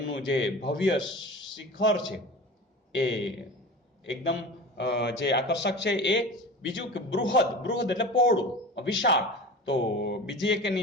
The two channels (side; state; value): both; normal; correlation 0.34